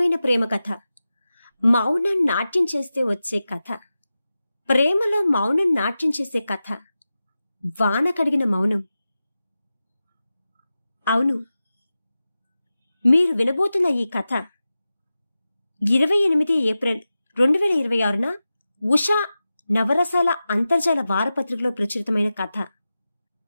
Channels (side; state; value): both; inverted; correlation -0.94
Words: ప్రేమ కథ, మౌనం నాట్యం చేస్తే వచ్చే కథ, ప్రేమలో మౌనం నాట్యం చేసే కథ, వాన కడిగిన మౌనం. అవును, మీరు వినబోతున్న ఈ కథ 28 ఏప్రిల్ 2026న ఉషా నవరసాల అంతర్జాల వారపత్రికలో ప్రచురితమైన కథ.